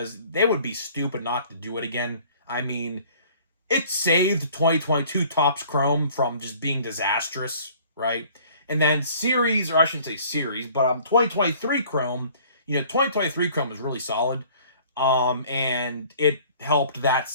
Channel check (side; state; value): both; inverted; correlation -0.52